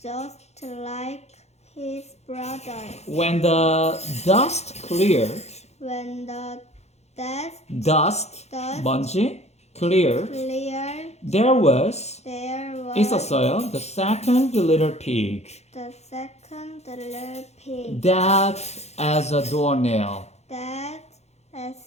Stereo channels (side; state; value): right; late; 0.31 ms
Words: just like his brothers. When the dust cleared, When the dust, dust 먼지, cleared, cleared, there was, there was 있었어요, the second little pig. the second little pig That as a doornail. that